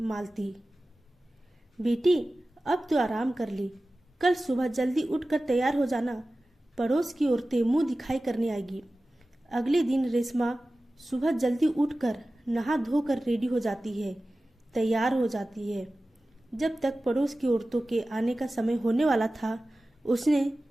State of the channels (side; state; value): both; normal; correlation 0.96